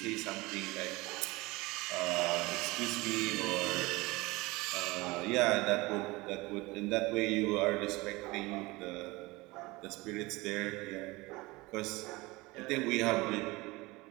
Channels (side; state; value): left; quieter; 22.3 dB